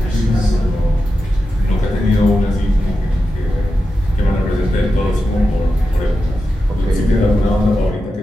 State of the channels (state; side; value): normal; both; correlation 0.90